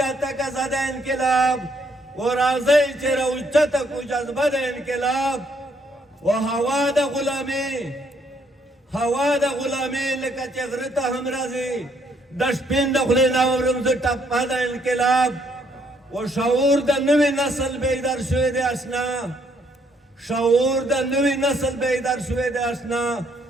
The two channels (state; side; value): normal; both; correlation 0.69